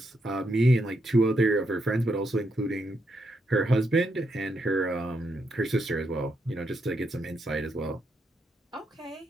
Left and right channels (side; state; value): both; normal; correlation 0.80